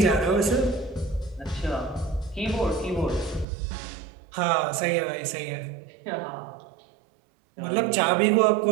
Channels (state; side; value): drops out; left; at 3.5 s